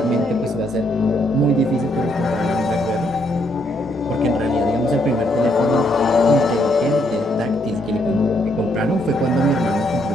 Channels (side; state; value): both; normal; correlation 0.73